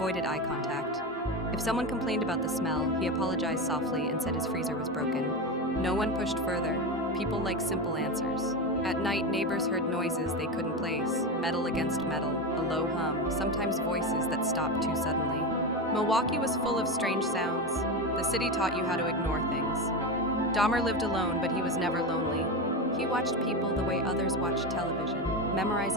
eye contact. If someone complained about the smell, he apologized softly and said his freezer was broken. No one pushed further. People liked simple answers. At night, neighbors heard noises they couldn't place, metal against metal, a low hum, sometimes voices that stopped too suddenly. Milwaukee was full of strange sounds. The city taught you how to ignore things. Dahmer lived alone, but he was never lonely. He watched people the way others watched television,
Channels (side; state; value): both; normal; correlation 0.18